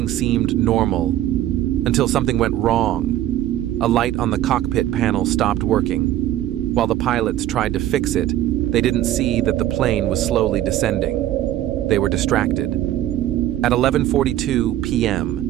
seemed normal until something went wrong. A light on the cockpit panel stopped working. While the pilots tried to fix it, they didn't see that the plane was slowly descending. They were distracted. At 11:42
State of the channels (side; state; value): left; quieter; 13.2 dB